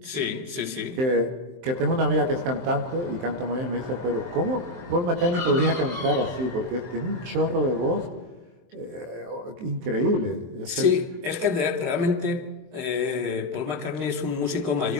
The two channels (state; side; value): late; left; 23 ms